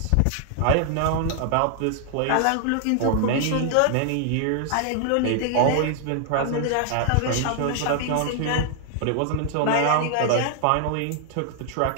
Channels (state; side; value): different; both; correlation 0.00